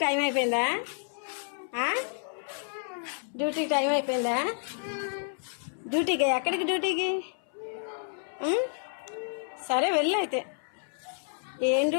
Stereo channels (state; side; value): silent; right; 58 dB below the other